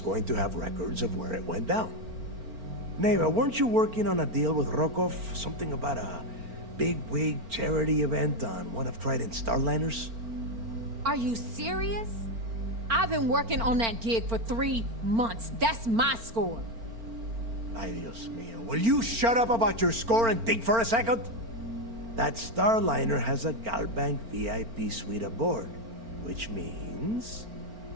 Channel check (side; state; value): left; late; 4.4 ms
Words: going to have records of where it went down. Neva, weren't you working on a deal with Rokov? Something about a big-wig charity event on one of Trident's Starliners? Are you serious? I've been working on that gig for 3 months. That's my score. Ay, Dios mío. Will you shut up about your score and think for a second? That Starliner has a Galbank VIP suite aboard, which means...